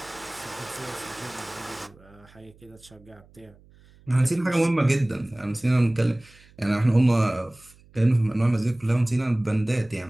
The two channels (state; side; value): noise; right; hum, 27 dB below the sound